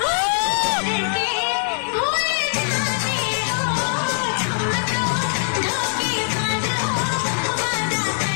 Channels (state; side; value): silent; right; 64 dB below the other